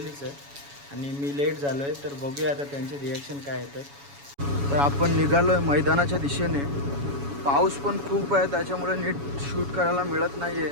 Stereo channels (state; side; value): late; left; 7.1 ms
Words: आहे आणि मी लेट झालो आहे. तर बघूया आता त्यांचे रिॲक्शन काय येतात. तर आपण निघालो आहे मैदानाच्या दिशेने. पाऊस पण खूप आहे, त्याच्यामुळे नीट शूट करायला मिळत नाही